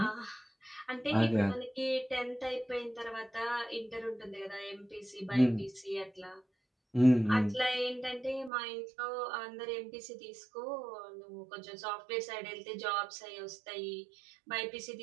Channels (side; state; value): left; drops out; at 8.5 s